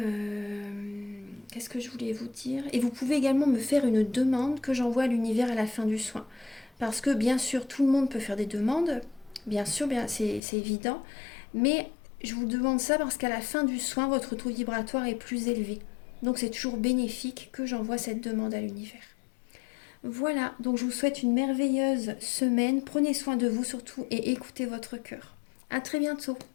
qu'est-ce que je voulais vous dire ? Et vous pouvez également me faire une demande que j'envoie à l'univers à la fin du soin. Parce que bien sûr, tout le monde peut faire des demandes. Bien sûr, c'est évident. Mais je vous demande ça parce qu'à la fin du soin, votre taux vibratoire est plus élevé. Donc c'est toujours bénéfique que j'envoie cette demande à l'univers. Voilà, donc je vous souhaite une merveilleuse semaine. Prenez soin de vous surtout et écoutez votre cœur. À très bientôt.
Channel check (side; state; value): right; drops out; at 10.4 s